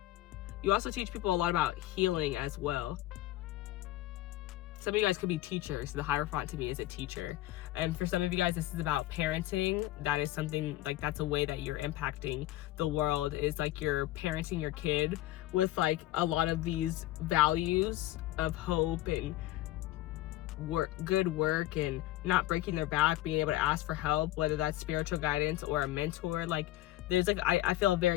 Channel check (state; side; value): quieter; right; 15.8 dB